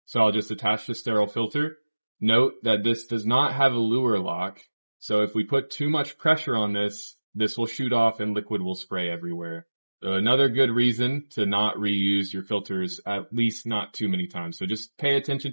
So I'll just attach the sterile filter. Note that this does not have a lure lock. So if we put too much pressure on this, this will shoot off and liquid will spray everywhere. So another good reason to not reuse your filters, at least not too many times. So just pay attention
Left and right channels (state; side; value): inverted; both; correlation -1.00